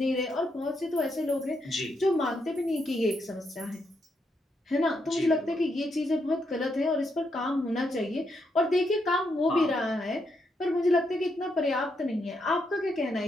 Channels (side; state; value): both; normal; correlation 0.79